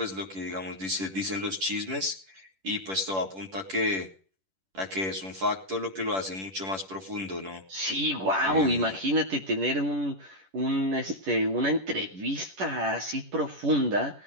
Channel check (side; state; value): left; late; 10 ms